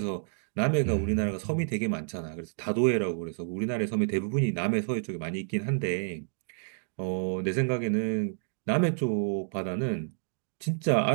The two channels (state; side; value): silent; left; digital silence